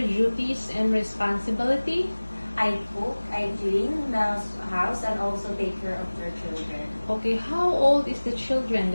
duties and responsibility? I cook, I clean the house, and also take care of their children. Okay, how old is the children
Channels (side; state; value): both; inverted; correlation -1.00